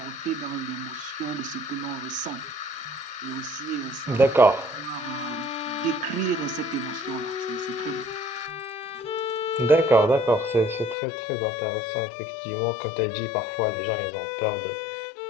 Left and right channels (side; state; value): right; drops out; at 11.0 s